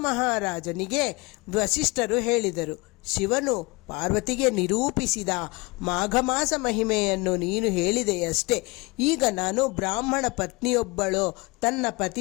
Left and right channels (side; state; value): right; quieter; 25.9 dB